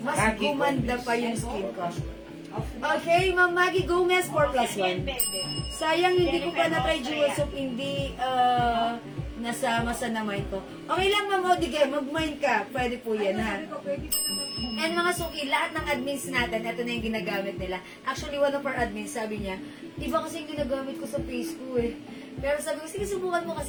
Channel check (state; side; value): identical; both; correlation 1.00